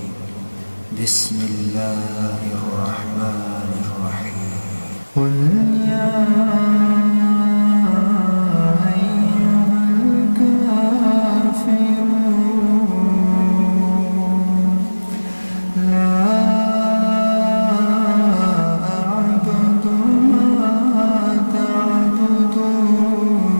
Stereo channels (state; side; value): inverted; both; correlation -1.00